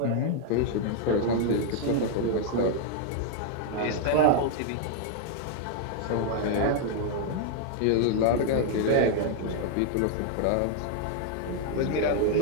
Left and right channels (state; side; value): different; both; correlation -0.01